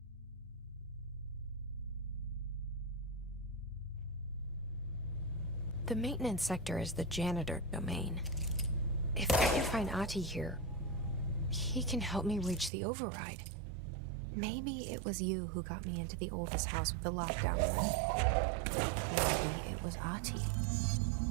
The maintenance sector is the janitor domain. If I can find Ahti here, he can help me reach the override. Maybe it was you who got me into the oldest house with the lockdown room. Maybe it was Ahti.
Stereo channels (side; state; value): left; drops out; at 12.7 s